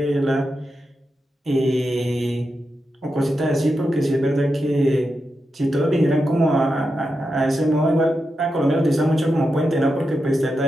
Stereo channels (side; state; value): both; normal; correlation 0.88